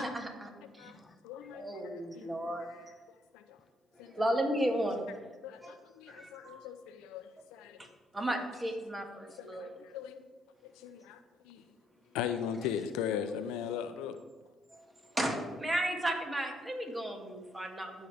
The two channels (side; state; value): both; normal; correlation 0.71